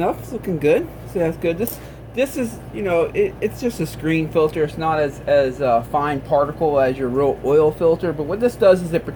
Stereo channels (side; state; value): both; identical; correlation 1.00